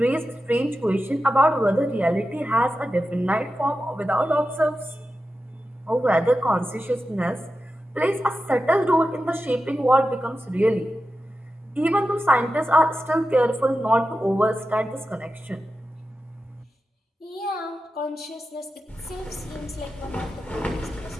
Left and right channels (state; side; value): normal; both; correlation 0.91